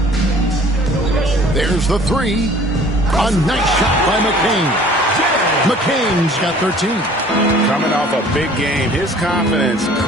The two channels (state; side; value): normal; both; correlation 0.51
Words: There's the 3. A nice shot by McCain. McCain's got 13. Coming off a big game, his confidence